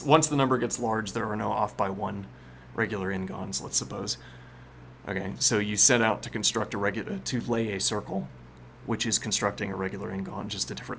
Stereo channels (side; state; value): both; identical; correlation 1.00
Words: the number gets large, there are no off by one regular n-gons, let's suppose. Okay, so you set out to construct to lay a circle, which is constructing a regular n-gon, just a